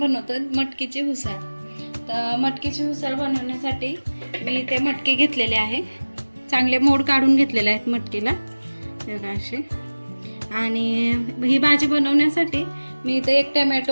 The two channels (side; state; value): both; inverted; correlation -1.00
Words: मटकीची उसळ. तर मटकीची उसळ बनवण्यासाठी मी ते मटकी घेतलेले आहे. चांगले मोड काढून घेतलेले आहेत मटकीला बघा असे. आणि ही भाजी बनवण्यासाठी मी इथे 1